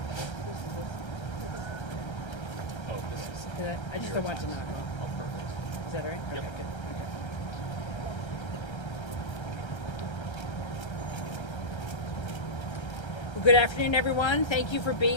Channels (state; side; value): late; right; 1.3 ms